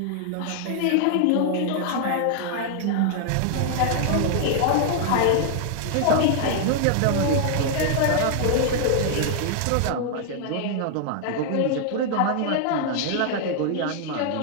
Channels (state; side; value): different; both; correlation 0.00